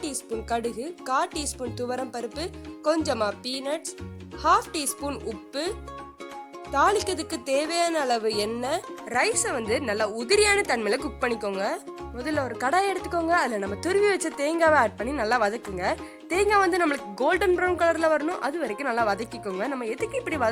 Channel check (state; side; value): identical; both; correlation 1.00